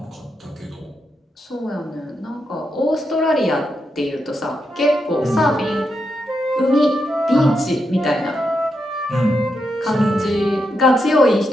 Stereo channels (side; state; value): both; normal; correlation 0.84